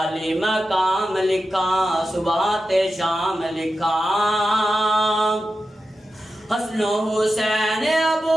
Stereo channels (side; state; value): both; normal; correlation 0.91